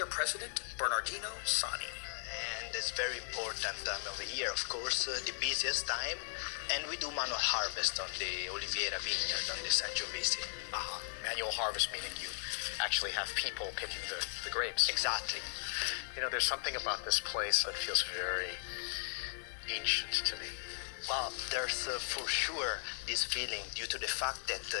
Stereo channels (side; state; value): right; silent; digital silence